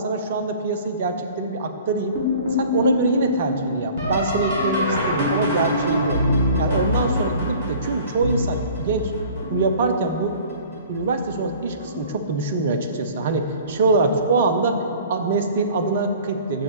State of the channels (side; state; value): both; inverted; correlation -0.47